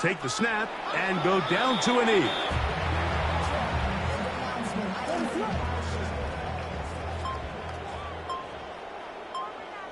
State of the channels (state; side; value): identical; both; correlation 1.00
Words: the snap and go down to a knee.